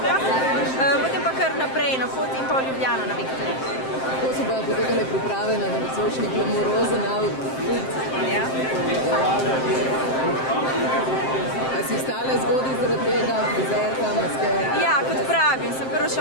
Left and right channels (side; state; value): right; late; 7.6 ms